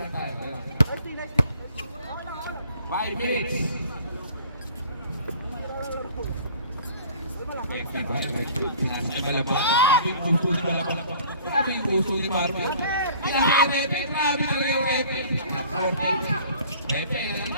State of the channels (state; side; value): inverted; both; correlation -0.49